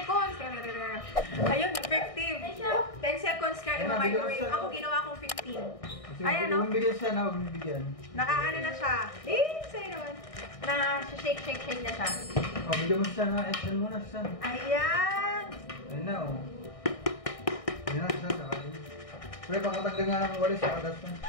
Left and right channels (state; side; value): late; right; 1.6 ms